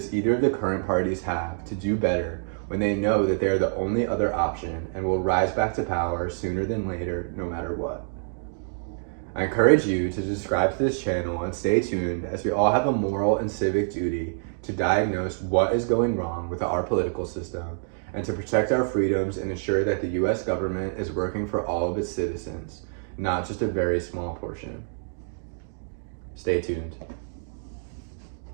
either of the current parties have to do better when they know that they are the only other option and will rise back to power sooner than later, no matter what? I encourage you to subscribe to this channel and stay tuned, as we all have a moral and civic duty to diagnose what is going wrong with our political system and to protect our freedoms and ensure that the US government is working for all of its citizens, not just a very small portion. Stay tuned.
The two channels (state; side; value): silent; left; digital silence